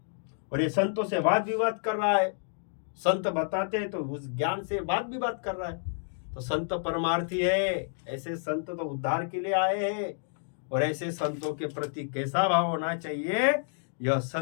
और ये संतों से वाद विवाद कर रहा है। संत बताते हैं तो उस ज्ञान से वाद विवाद कर रहा है। तो संत परमार्थी है। ऐसे संत तो उद्धार के लिए आए हैं। और ऐसे संतों के प्रति कैसा भाव होना चाहिए, यह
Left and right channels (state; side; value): silent; right; digital silence